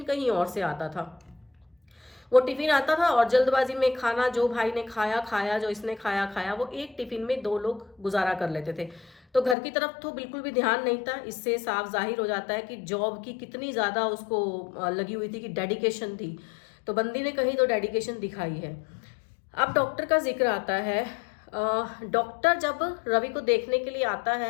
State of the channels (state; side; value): drops out; right; at 9.6 s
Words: कहीं और से आता था। वो टिफिन आता था और जल्दबाजी में खाना, जो भाई ने खाया खाया, जो इसने खाया खाया, वो एक टिफिन में 2 लोग गुजारा कर लेते थे। तो घर की तरफ तो बिल्कुल भी ध्यान नहीं था। इससे साफ जाहिर हो जाता है कि जॉब की कितनी ज्यादा उसको लगी हुई थी, कि डेडिकेशन थी। तो बंदी ने कहीं तो डेडिकेशन दिखाई है। अब डॉक्टर का जिक्र आता है। डॉक्टर जब रवि को देखने के लिए आता